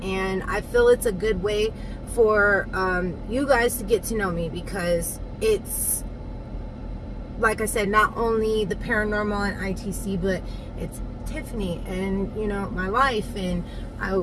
and I feel it's a good way for you guys to get to know me, because it's, like I said, not only the paranormal and ITC, but it's Tiffany and my life. And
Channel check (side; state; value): both; identical; correlation 1.00